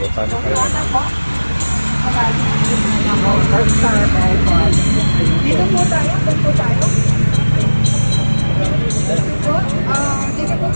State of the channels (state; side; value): inverted; both; correlation -1.00